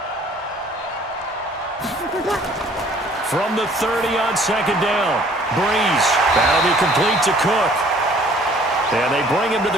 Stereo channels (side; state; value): both; normal; correlation 0.56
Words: From the 30 on 2nd down, Brees. That'll be complete to Cook. And they bring him to